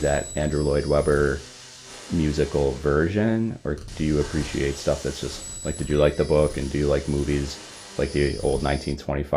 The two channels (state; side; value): identical; both; correlation 1.00